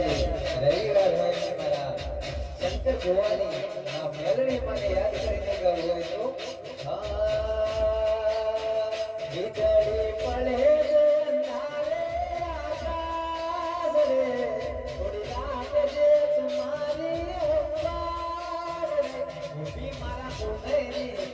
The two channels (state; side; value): identical; both; correlation 1.00